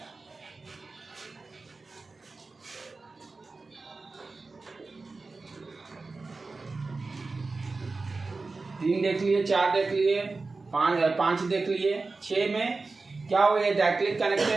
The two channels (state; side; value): quieter; left; 3.8 dB